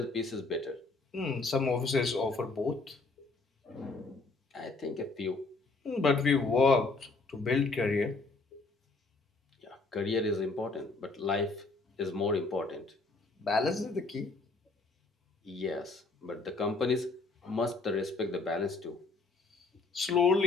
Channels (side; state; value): right; quieter; 3.7 dB